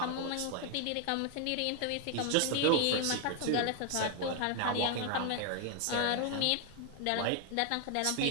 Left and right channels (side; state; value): both; different; correlation 0.00